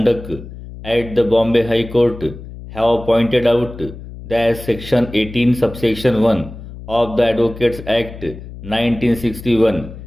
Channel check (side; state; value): left; noise; hum, 14 dB below the sound